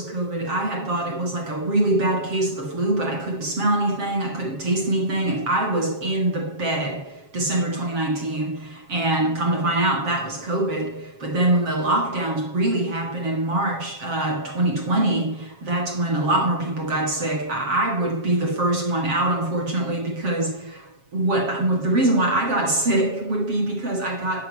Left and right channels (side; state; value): left; late; 7.4 ms